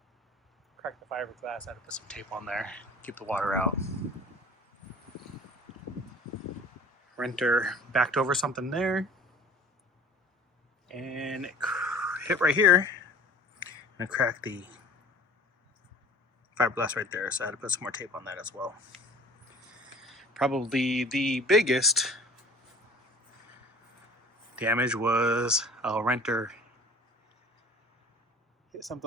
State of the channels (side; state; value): both; normal; correlation 0.46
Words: Cracked the fiberglass, I had to put some tape on there, keep the water out. Renter backed over something there, and it hit right here, and it cracked the fiberglass right there, so I had to put some more tape on that as well. Probably the biggest damage was a renter hit